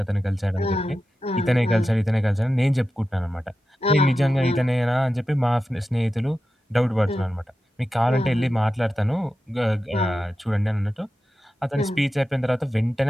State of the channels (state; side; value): normal; both; correlation 0.92